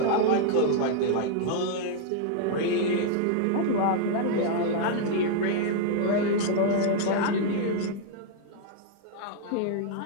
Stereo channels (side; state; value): both; different; correlation -0.01